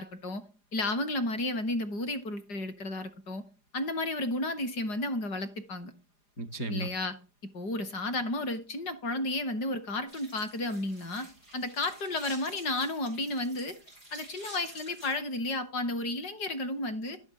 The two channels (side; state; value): right; late; 4.9 ms